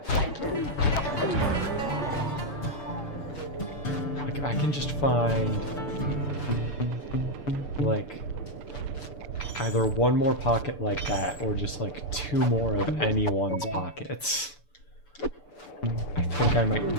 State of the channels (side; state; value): right; late; 6.9 ms